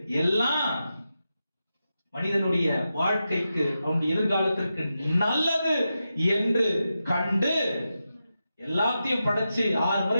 எல்லாம் மனிதனுடைய வாழ்க்கைக்கு அவனுடைய எதிர்காலத்திற்கு நல்லது என்று கண்டு எல்லாத்தையும் படைச்சு 6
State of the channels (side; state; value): both; inverted; correlation -0.90